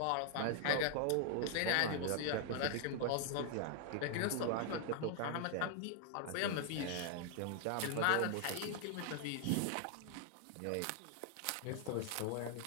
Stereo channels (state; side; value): different; both; correlation 0.00